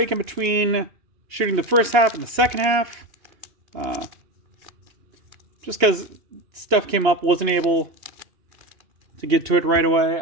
in between shooting the first half and the second half, just because stuff came up, wasn't able to get to it right away.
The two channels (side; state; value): left; late; 2.9 ms